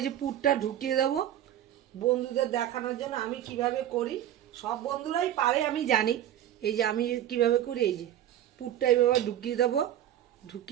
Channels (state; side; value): quieter; left; 11.7 dB